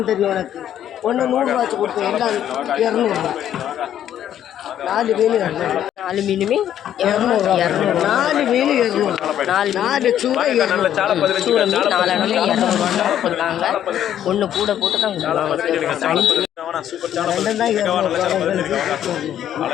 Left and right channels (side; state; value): right; quieter; 10.7 dB